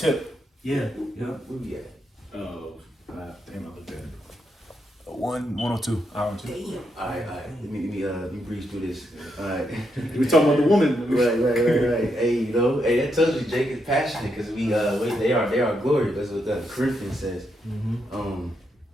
Yeah. Where we at? Damn, I looked at it. 102. Hour 2. Damn. All right. Let me breeze through this. All right. We talking about the woman. Right. Hey, that tells you Jake is passionate, because they are glory. That's what the Corinthians says.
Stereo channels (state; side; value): normal; both; correlation 0.81